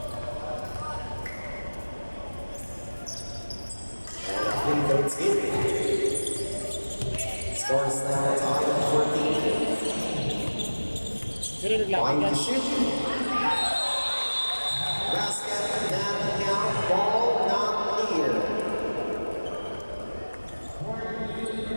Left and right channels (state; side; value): inverted; both; correlation -1.00